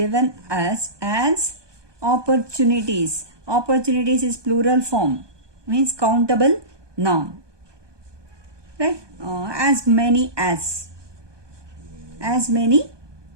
us as opportunities. Opportunities is plural form, means countable noun. Right? As many as. As many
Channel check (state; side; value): late; left; 1.2 ms